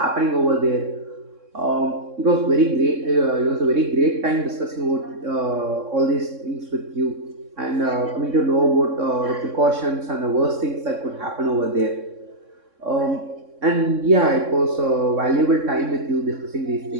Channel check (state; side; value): late; left; 3.6 ms